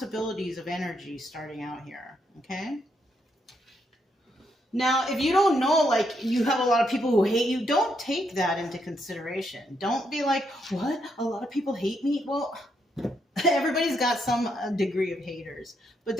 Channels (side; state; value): both; normal; correlation 0.77